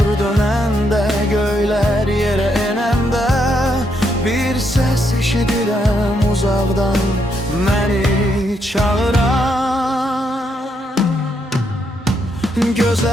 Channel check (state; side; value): normal; both; correlation 0.77